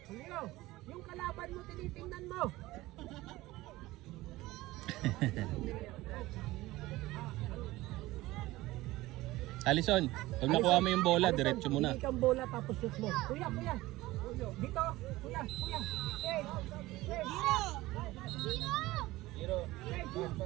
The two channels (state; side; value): quieter; left; 18.4 dB